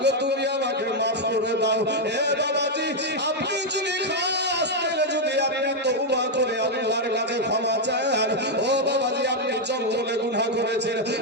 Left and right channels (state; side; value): normal; both; correlation 0.00